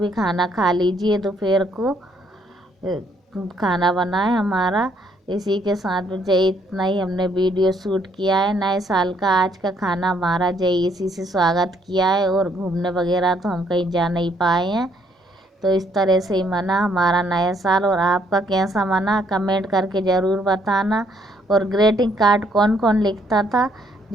खाना खा लीजिए। दोपहर को खाना बना है हमारा। इसी के साथ जय इतना ही हमने वीडियो शूट किया है नए साल का। आज का खाना हमारा जय इसी से स्वागत किया है, और घूमने वगैरह तो हम कहीं जा नहीं पाए हैं। तो इस तरह से ही मना हमारा नया साल। और आपका कैसा मना कमेंट करके ज़रूर बताना। और ग्रीटिंग कार्ड कौन कौन लिखता था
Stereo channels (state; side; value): normal; both; correlation 0.69